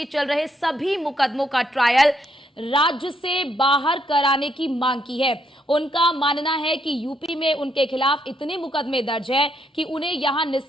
चल रहे सभी मुकदमों का ट्रायल राज्य से बाहर कराने की मांग की है। उनका मानना है कि यूपी में उनके खिलाफ इतने मुकदमे दर्ज हैं कि उन्हें यहां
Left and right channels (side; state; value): both; normal; correlation 0.75